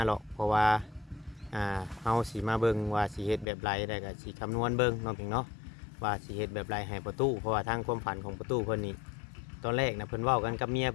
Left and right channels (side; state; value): right; drops out; at 3.5 s